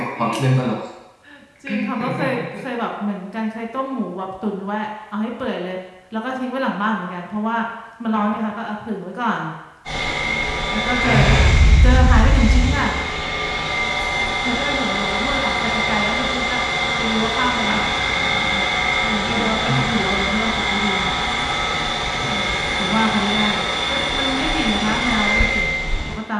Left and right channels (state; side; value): identical; both; correlation 1.00